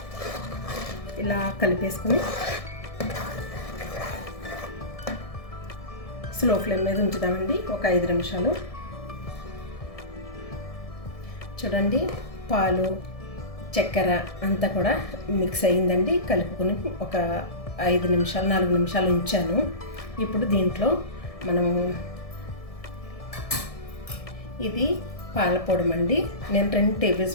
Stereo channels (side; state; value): right; late; 1.7 ms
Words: ఇలా కలిపేసుకుని స్లో ఫ్లేమ్ మీద ఉంచుదామండి ఒక 5 నిమిషాలు. చూడండి పాలు చక్కెర అంతా కూడా మిక్స్ అయ్యిందండి. కలుపుకొని ఒక 5 నిమిషాలు 4 నిమిషాలు ఉంచాను. ఇప్పుడు దీంట్లో మనము ఇది పాలపొడమండి. నేను 2 టేబుల్